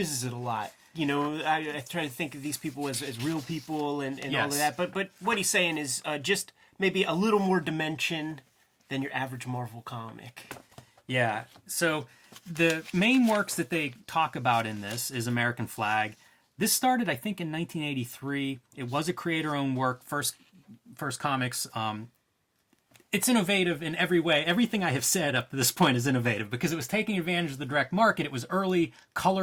it a lot. I try to think of these people as real people and Yes. all of that. But what he's saying is just maybe a little more dimension than your average Marvel comic. Yeah. So the main works that they talk about in this is American Flagg. This started, I think, in 1983. It was a creator-owned work, first comics. It's innovative in every way. Everything I have said up to this point is innovative because it was taking advantage of the direct market. It was early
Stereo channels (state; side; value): identical; both; correlation 1.00